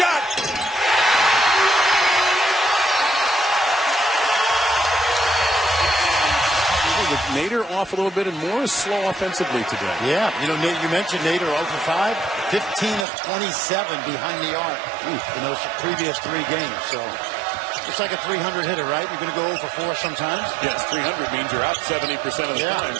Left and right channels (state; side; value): drops out; left; at 13.1 s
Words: With Nader off a little bit and Morris slow offensively today. Yeah, you know, you mentioned Nader 0 for 5, 15 of 27 behind the arc in those previous 3 games. So it's like a 300 hitter, right? You're going to go 0 for 4 sometimes. Yes, 300 means you're out 70% of the time